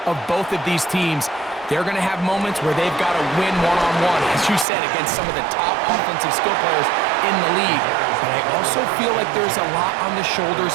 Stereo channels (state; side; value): drops out; left; at 4.7 s